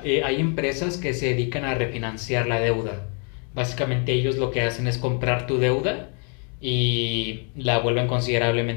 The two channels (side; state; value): right; quieter; 38.9 dB